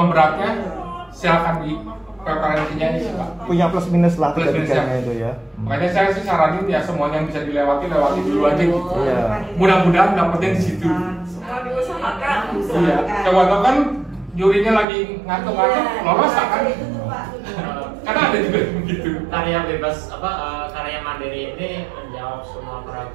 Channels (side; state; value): left; drops out; at 14.9 s